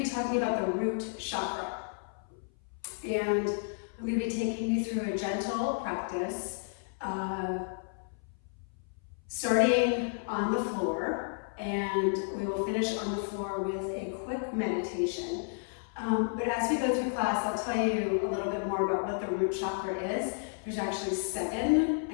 be talking about the root chakra. And I'm going to be taking you through a gentle practice, starting on the floor, and we will finish on the floor with a quick meditation. But as we go through class, I'll tell you a little bit more about what the root chakra is. There's actually 7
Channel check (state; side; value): silent; right; 56 dB below the other